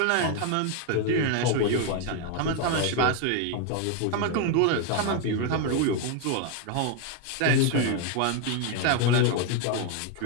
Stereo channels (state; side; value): different; both; correlation 0.01